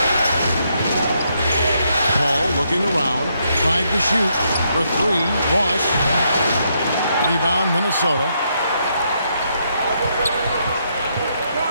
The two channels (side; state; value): both; inverted; correlation -0.77